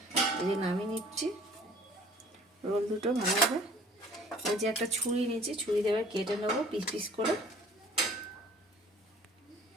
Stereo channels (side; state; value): both; normal; correlation 0.52